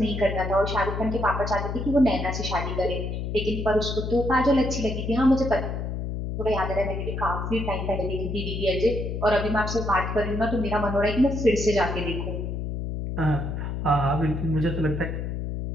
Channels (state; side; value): noise; left; hum, 4 dB below the sound